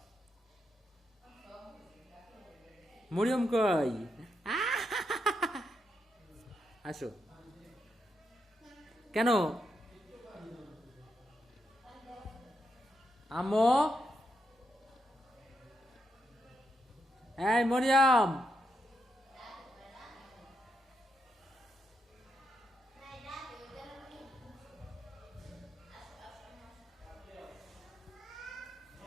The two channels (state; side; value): normal; both; correlation 0.81